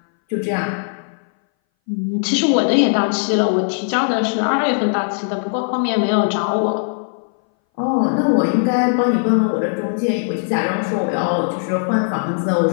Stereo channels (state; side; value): silent; right; 61 dB below the other